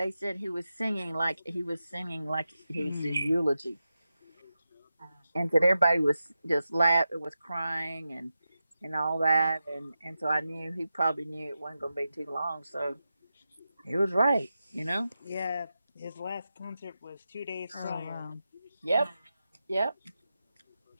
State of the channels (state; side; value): inverted; both; correlation -0.91